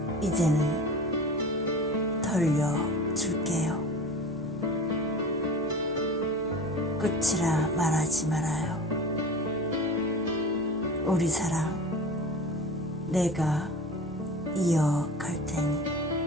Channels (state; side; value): normal; both; correlation 0.37